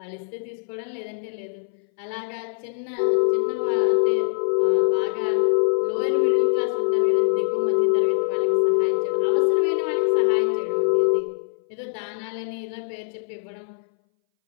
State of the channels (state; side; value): silent; right; 62 dB below the other